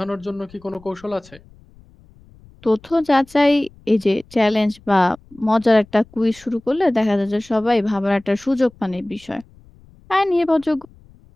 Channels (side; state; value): left; noise; rumble, 26 dB below the sound